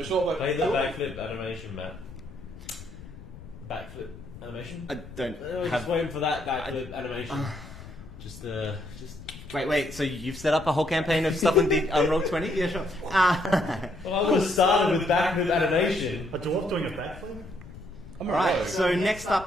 short bow. Play the backflip animation, Matt. Backflip animation? I don't Just have... waiting for that backflip animation. Just. Wait, so you've set up a whole campaign of stuff on Roll20? Yeah, sure. Well, I would have started with backflip animation. A dwarf doing a backflip? Alright, so next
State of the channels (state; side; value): noise; left; rumble, 16 dB below the sound